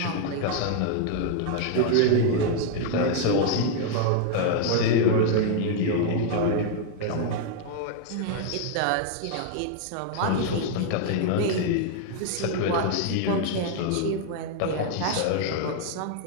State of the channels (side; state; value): both; different; correlation 0.00